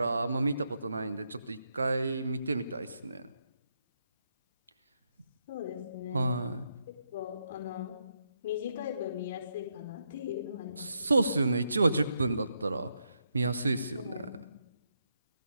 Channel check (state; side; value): inverted; both; correlation -0.80